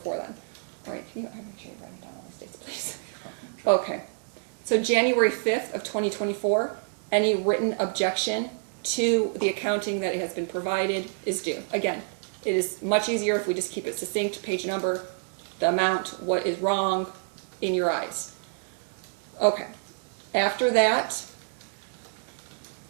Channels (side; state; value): left; silent; digital silence